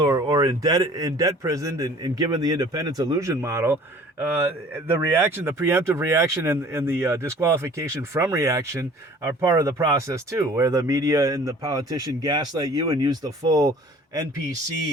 or in debt prisoned and given the independence illusion model. The reaction, the preemptive reaction and the disqualification from reaction are part of the process too, where the media and the politician gaslight you and use the full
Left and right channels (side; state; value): both; normal; correlation 0.49